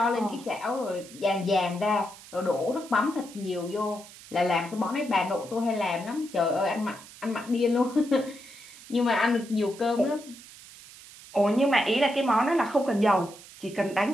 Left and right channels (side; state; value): right; noise; hiss, 19 dB below the sound